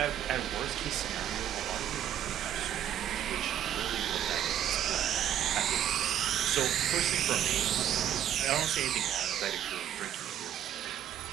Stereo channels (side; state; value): left; quieter; 10.6 dB